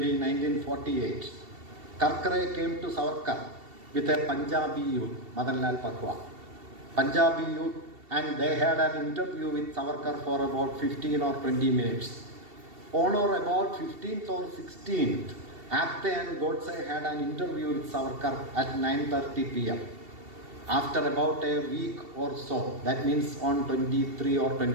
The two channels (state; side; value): late; left; 2.7 ms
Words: 1948, Karkare came to Savarkar with a Punjabi youth, Madan Lal Pakwa. Punjabi youth, and they had an interview with Savarkar for about 15 or 20 minutes. On or about 15th or 16th, Apte and Godse had an interview with Savarkar at 9:30 p.m. After about a week or so, that means on 23 or